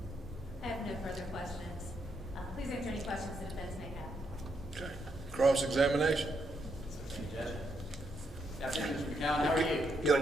I have no further questions. Please answer any questions the defense may have. Okay. Cross-examination. Afternoon, Mr. McCown, how are you?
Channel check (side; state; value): both; normal; correlation 0.78